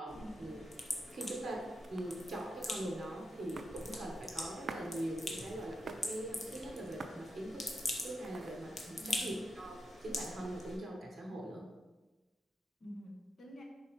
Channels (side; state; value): both; normal; correlation 0.85